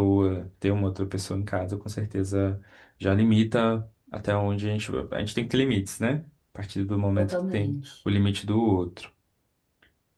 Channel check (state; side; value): identical; both; correlation 1.00